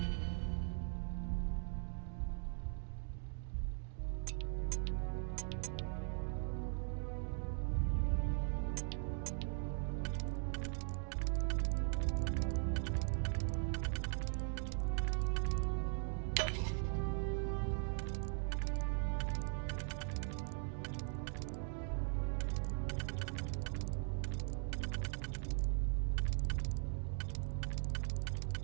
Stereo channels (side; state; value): left; silent; 51 dB below the other